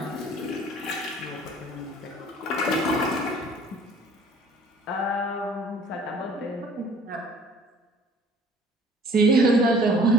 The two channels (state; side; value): normal; both; correlation 0.53